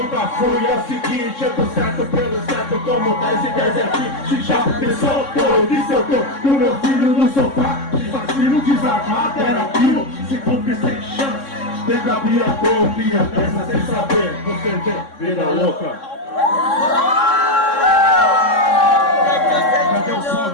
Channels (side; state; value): right; late; 3.6 ms